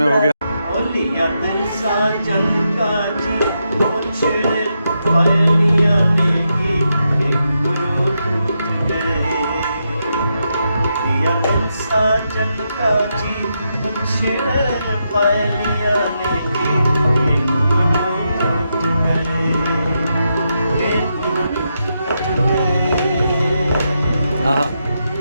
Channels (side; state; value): both; inverted; correlation -0.84